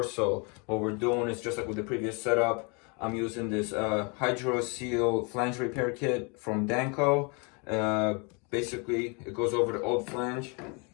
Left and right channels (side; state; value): right; quieter; 32.6 dB